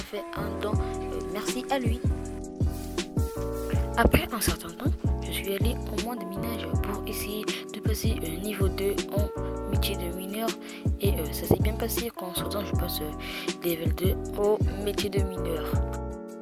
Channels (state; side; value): identical; both; correlation 1.00